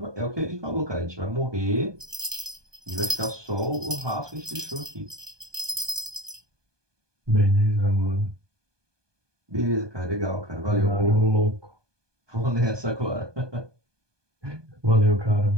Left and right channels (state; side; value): late; left; 1.2 ms